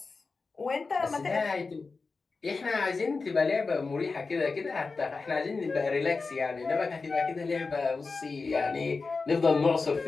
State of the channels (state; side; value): quieter; right; 4.2 dB